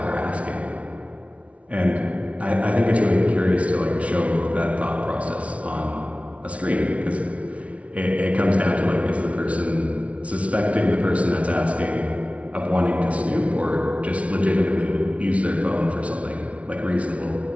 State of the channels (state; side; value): late; left; 0.064 ms